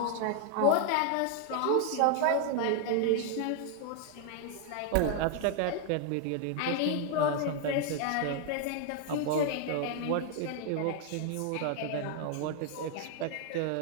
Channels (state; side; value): different; both; correlation 0.00